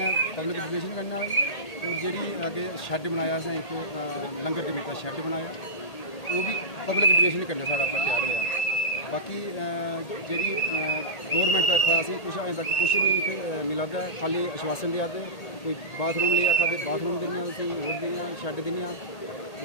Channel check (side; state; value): right; late; 1.8 ms